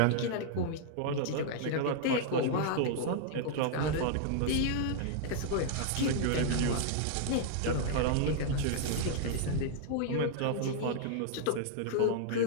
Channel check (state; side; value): different; both; correlation -0.01